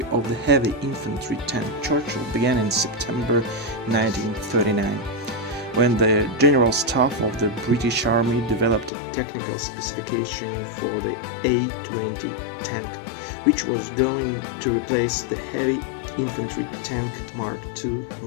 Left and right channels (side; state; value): right; drops out; at 8.9 s